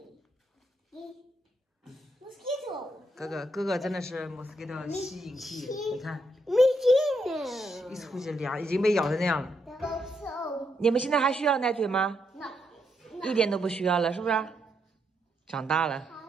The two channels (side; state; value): both; normal; correlation 0.78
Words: Mosquito. 哥哥真的是 mosquito 吸引器，你看， Mosquito. 一出去凉，已经被咬成那样了。 So. 你们现在还需要奶嘴吗？ No. 一点都不需要了，是不是？长大了，